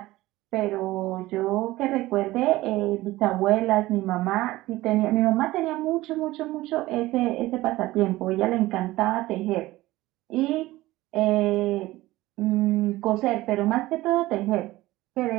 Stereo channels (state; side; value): quieter; left; 17.9 dB